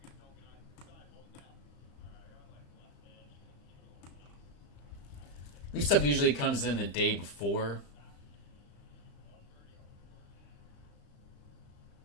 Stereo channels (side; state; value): right; late; 35 ms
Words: This stuff usually comes in the day before.